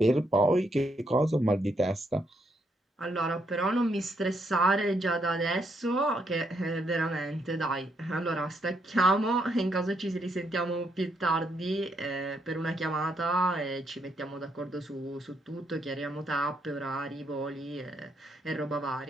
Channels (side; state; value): both; normal; correlation 0.76